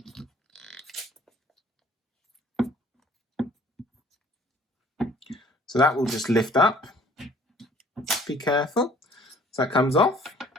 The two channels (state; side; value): normal; both; correlation 0.55